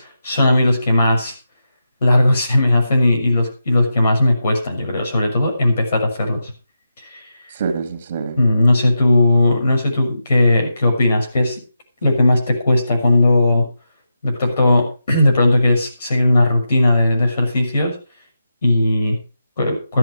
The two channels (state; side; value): inverted; both; correlation -0.88